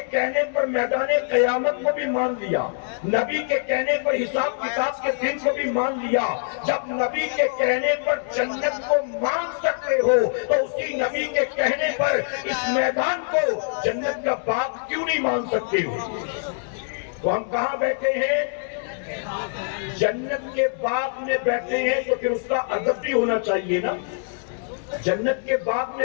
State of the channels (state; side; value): silent; right; digital silence